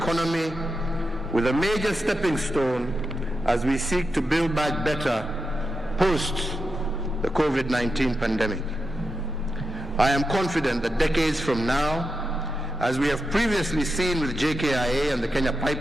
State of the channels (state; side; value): normal; both; correlation 0.87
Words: with a major stepping stone as we seek to build back better post the COVID-19 pandemic. I am confident that decades from now, as we have previously seen with JKIA and the Kenya